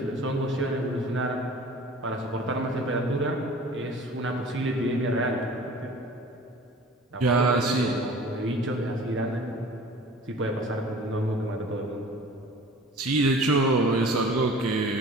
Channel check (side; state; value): both; normal; correlation 0.44